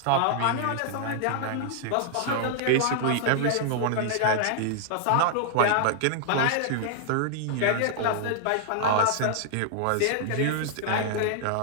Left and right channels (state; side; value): different; both; correlation -0.01